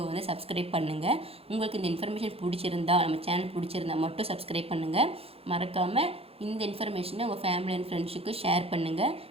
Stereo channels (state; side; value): late; left; 0.28 ms